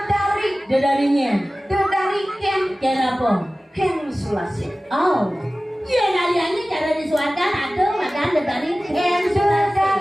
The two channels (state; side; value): normal; both; correlation 0.97